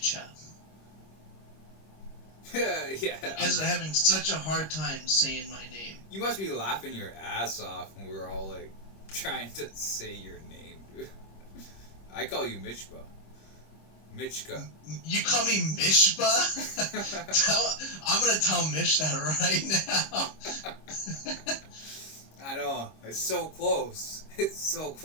Yeah. Because I'm having such a hard time saying my name. You must be laughing your ass off when we were all like trying to say your name, dude. I call you Michba. Michka. You call me Mishba? I'm gonna tell Mish that right now. I know. It's so close. It's so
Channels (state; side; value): late; right; 26 ms